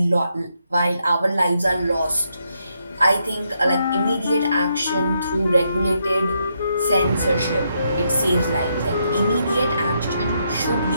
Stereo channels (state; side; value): inverted; both; correlation -0.78